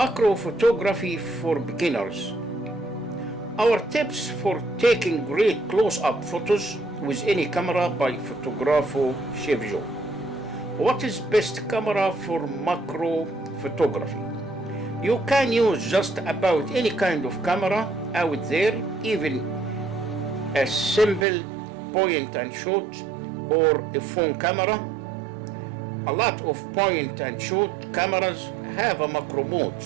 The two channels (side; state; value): left; drops out; at 21.2 s